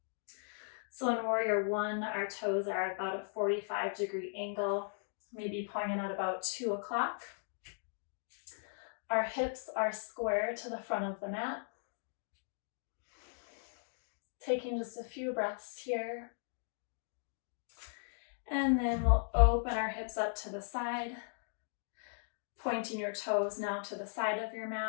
So in Warrior One, our toes are at about a 45-degree angle, maybe pointing at about 2 o'clock. Our hips are square to the front of the mat. Taking just a few breaths here. And then we'll open our hips up to the side, pointing your toes now to the side of your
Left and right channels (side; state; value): right; silent; digital silence